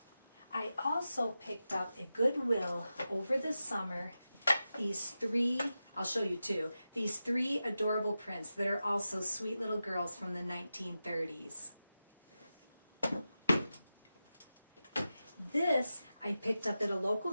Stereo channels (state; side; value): inverted; both; correlation -0.92